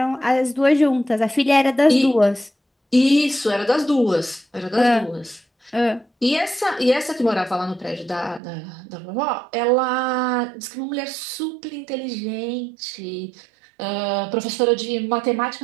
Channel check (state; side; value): drops out; left; at 8.4 s